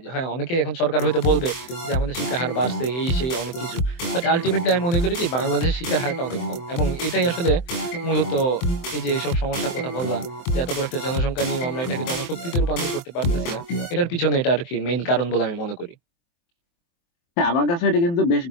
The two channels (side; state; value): right; late; 23 ms